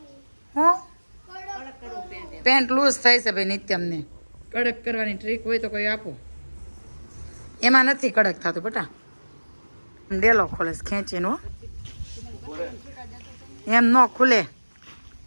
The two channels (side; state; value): both; inverted; correlation -1.00